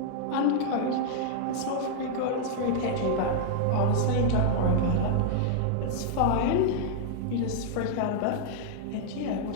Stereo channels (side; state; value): both; different; correlation -0.01